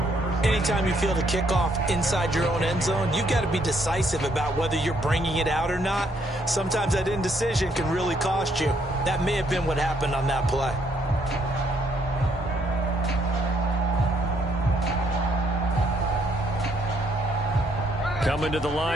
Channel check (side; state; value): both; normal; correlation 0.70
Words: Anytime you feel the kickoff inside your own end zone, you've got to be decisive about whether you're bringing it out or not. Sometimes that indecision can really cost you. That may have been what happened on that play. Coming to the